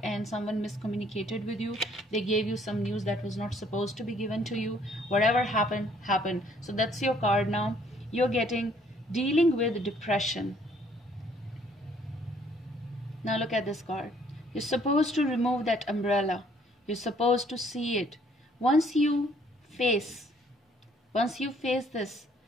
and someone miscommunicated with you. They gave you some news that was not supposed to be given to you. Whatever happened. So that's your card now. You're getting dealing with depression. Now look at this card. You're supposed to remove that umbrella. You're supposed to see it. Once you face this,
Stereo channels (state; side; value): normal; both; correlation 0.63